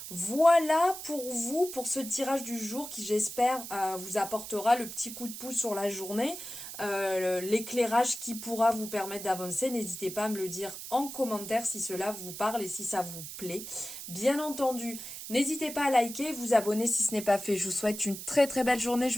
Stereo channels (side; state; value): right; noise; hiss, 10 dB below the sound